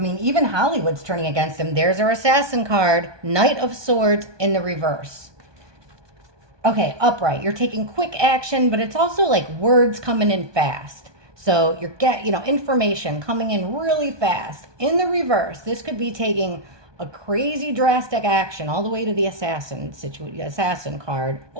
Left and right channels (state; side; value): late; left; 1.2 ms